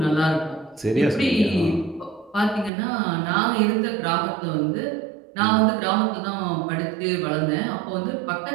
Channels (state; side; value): drops out; left; at 2.7 s